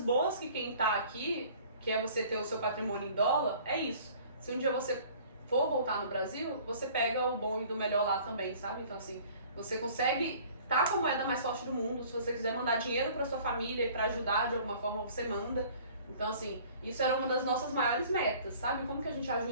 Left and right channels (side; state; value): both; inverted; correlation -0.51